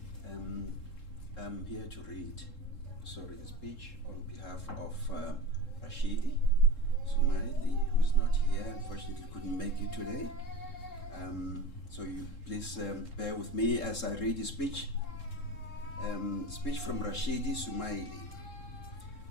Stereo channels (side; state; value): right; late; 3.7 ms